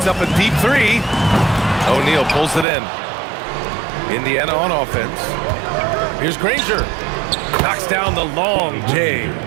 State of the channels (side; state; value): left; drops out; at 2.7 s